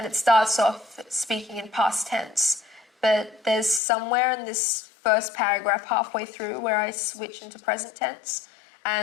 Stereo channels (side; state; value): right; drops out; at 3.8 s